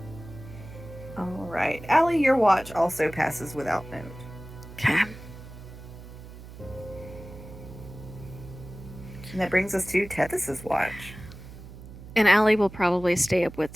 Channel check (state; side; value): noise; right; hum, 15 dB below the sound